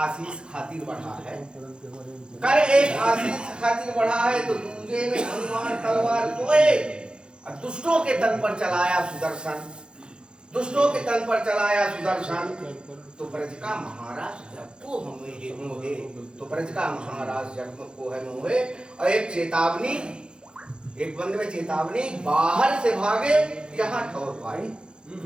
खातिर बढ़ा है, कर एक आशीष खातिर बढ़ा है, तो दूजे में हनुमान तलवार सोए, और दुष्टों के तन पर चलाया सुदर्शन, दुष्टों के तन पर चलाया सुदर्शन, तो ब्रज का महाराज जब को हमें मोहे, तो ब्रज का महाराज जब को है मोहे। और एक चेतावनी, एक बंद में चेतावनी, बाहर से भागे यहाँ ठौर पाए,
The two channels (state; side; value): late; left; 0.050 ms